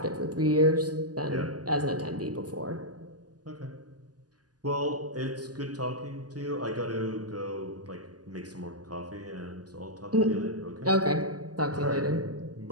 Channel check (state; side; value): late; left; 0.68 ms